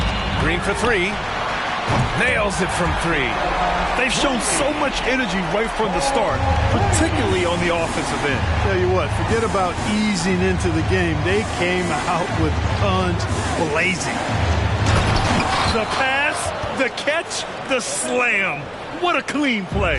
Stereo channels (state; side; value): identical; both; correlation 1.00